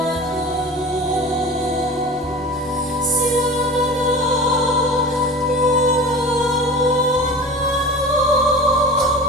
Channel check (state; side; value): normal; both; correlation 0.36